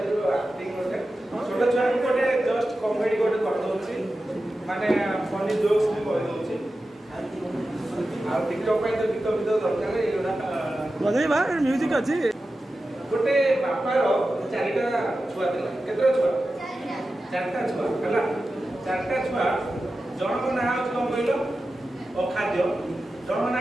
माने फनी जोक्स भी कर दोछि आ टिकटॉक पे तो गीत दरकार एटा बजै बा म्यूजिक अछि गोटे बापार चारिटा छुआ थिला केतरा छुआ चारटा छुआ हला चारटा छुआ जनक ना होछ कोन कहलो अखाद्य जनक ना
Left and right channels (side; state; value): both; normal; correlation 0.93